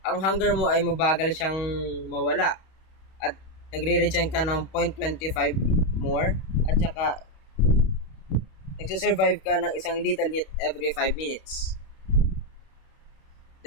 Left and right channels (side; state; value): right; late; 31 ms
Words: ang hunger mo ay mabagal siyang mawala at nagre-regen ka ng 0.25 more at saka nagsusurvive ka ng isang lethal hit every 5 minutes.